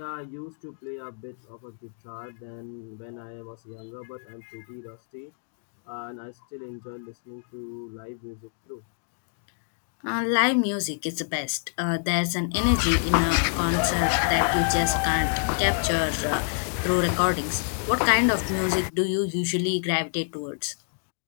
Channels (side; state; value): right; silent; digital silence